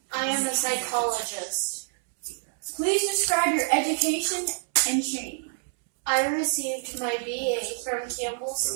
I am a psychologist. Please describe your education and training. I received my BA from Campbell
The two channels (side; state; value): left; silent; 60 dB below the other